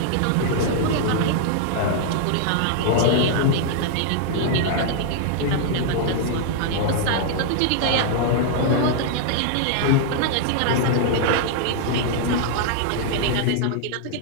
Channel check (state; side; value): different; both; correlation -0.01